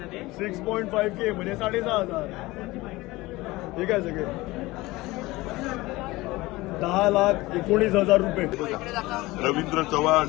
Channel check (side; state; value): right; quieter; 20.2 dB